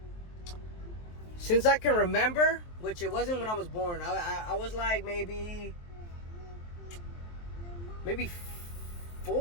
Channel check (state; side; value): late; right; 23 ms